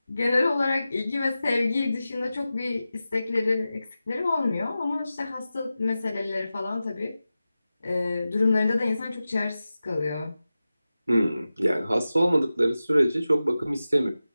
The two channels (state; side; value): inverted; both; correlation -0.94